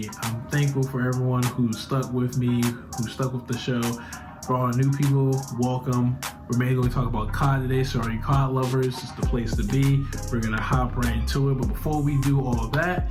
I'm thankful for everyone who stuck with me, who stuck with the show. For all the new people, welcome. We're mainly going to talk about COD today, so all you COD lovers, it's the place to be. We're going to hop right into it. But before we do all of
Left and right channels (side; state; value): both; identical; correlation 1.00